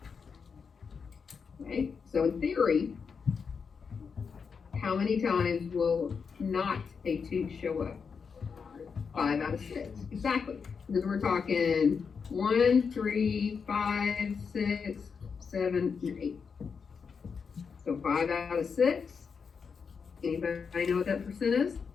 Okay, so in theory, how many times will not a 2 show up? 5 out of 6, exactly. Because we're talking 1, 3, 5, 6, 7, and 8. So 5 out of 6. Anybody know what that percent is?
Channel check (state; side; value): quieter; right; 5.8 dB